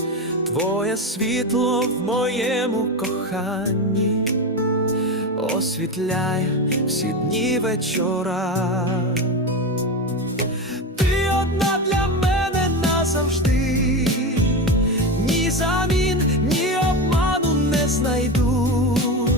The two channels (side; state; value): both; normal; correlation 0.19